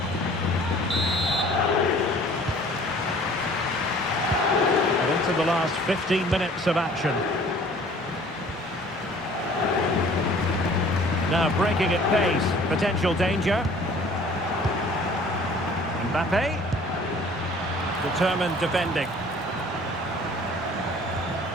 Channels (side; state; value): both; normal; correlation 0.51